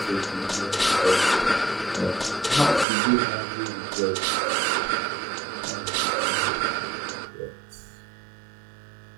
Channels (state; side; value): drops out; left; at 2.9 s